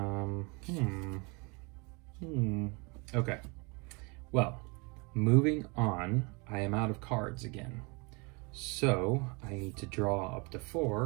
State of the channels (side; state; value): left; quieter; 30.1 dB